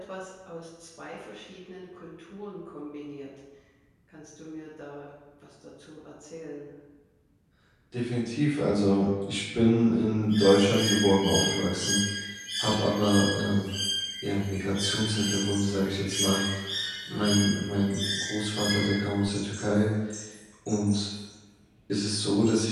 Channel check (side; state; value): both; identical; correlation 1.00